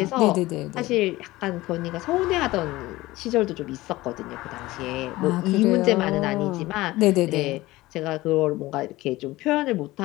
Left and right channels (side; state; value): right; quieter; 18.5 dB